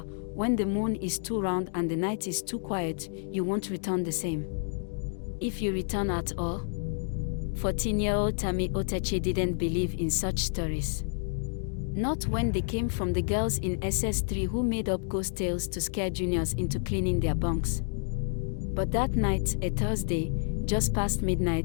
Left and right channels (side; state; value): right; silent; digital silence